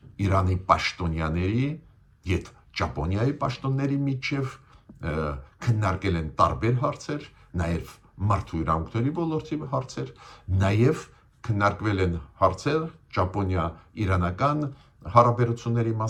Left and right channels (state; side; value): identical; both; correlation 1.00